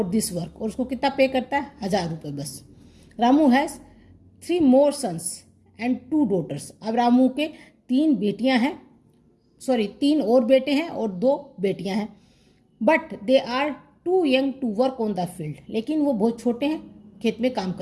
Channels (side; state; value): both; identical; correlation 1.00